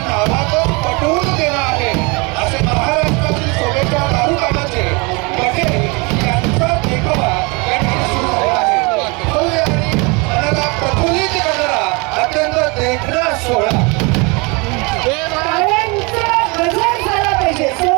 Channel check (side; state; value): left; quieter; 28.9 dB